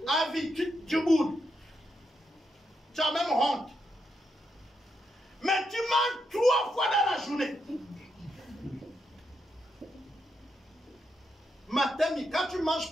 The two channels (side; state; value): both; normal; correlation 0.81